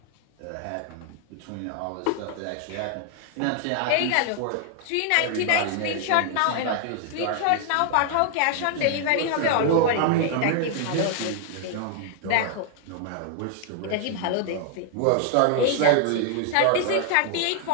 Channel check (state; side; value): different; both; correlation 0.00